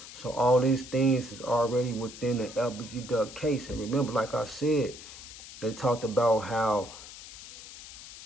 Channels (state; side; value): noise; left; hiss, 15 dB below the sound